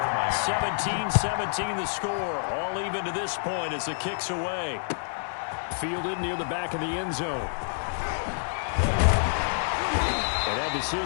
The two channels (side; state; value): right; silent; digital silence